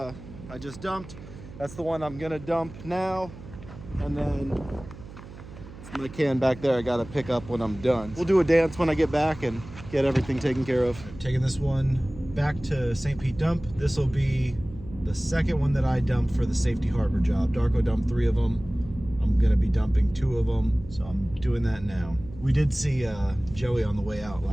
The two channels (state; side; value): noise; right; hum, 16 dB below the sound